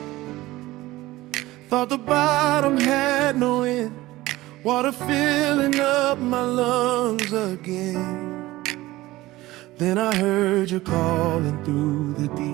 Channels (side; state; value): left; quieter; 18.0 dB